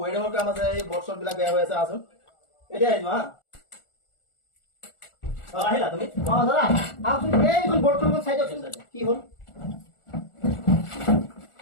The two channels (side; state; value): right; late; 1.4 ms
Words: ৱেডিঙৰ কাম আছে, এই বৰ্ড বিলাক বেয়া হৈ আছে, আছোন এতিয়া আহিবা হা। আহিলা তুমি? অ দাদা আহকচোন এইখন বৰ্ডখন চাই দিয়কচোন কি হ'ল